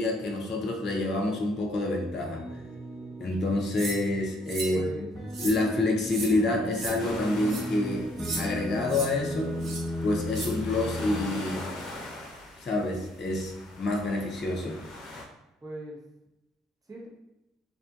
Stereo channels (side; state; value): both; normal; correlation 0.66